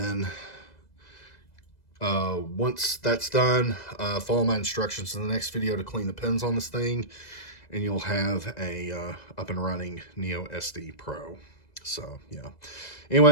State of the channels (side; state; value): right; late; 2.0 ms